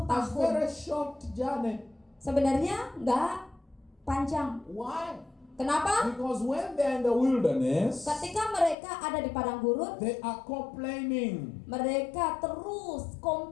tahun. very short journey. Sebenarnya nggak panjang. Why? Kenapa? Because when they're in the wilderness, Ketika mereka ada di padang gurun, they are complaining. mereka terus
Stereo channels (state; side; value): drops out; right; at 8.8 s